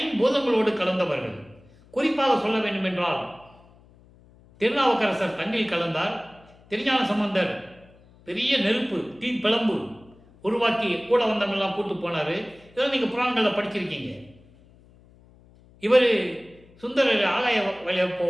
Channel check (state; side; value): noise; left; hum, 27 dB below the sound